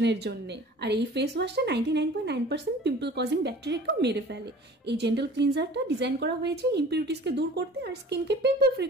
জন্য। আর এই ফেস ওয়াশটা 99.9% পিম্পল কজিং ব্যাকটেরিয়াকেও মেরে ফেলে। এই জেন্টাল ক্লিনজারটা ডিজাইন করা হয়েছে ইম্পিউরিটিসকে দূর করতে আর স্কিনকে পিম্পল ফ্রি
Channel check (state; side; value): normal; both; correlation 0.45